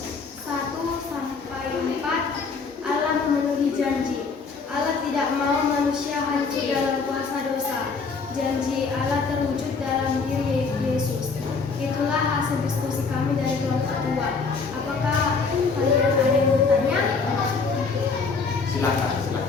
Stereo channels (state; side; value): quieter; right; 4.7 dB